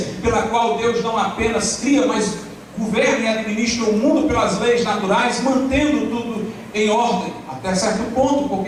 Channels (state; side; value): identical; both; correlation 1.00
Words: pela qual Deus não apenas cria, mas governa e administra o mundo pelas leis naturais, mantendo tudo em ordem, até certo ponto,